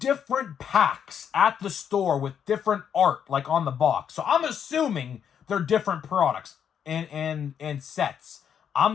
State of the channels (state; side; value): quieter; right; 8.3 dB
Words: packs at the store with different art, like on the box. So I'm assuming they're different products and sets.